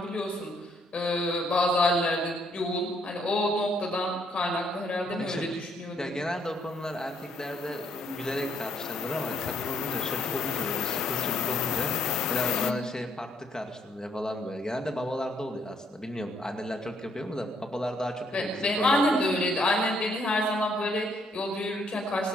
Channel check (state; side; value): normal; both; correlation 0.69